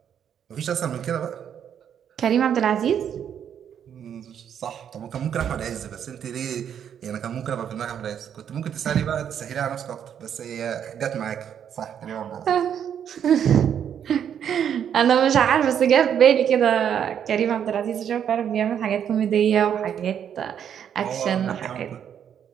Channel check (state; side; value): quieter; left; 8.8 dB